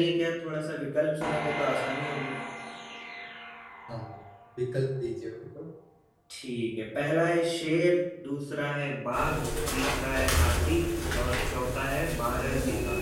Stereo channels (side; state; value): both; identical; correlation 1.00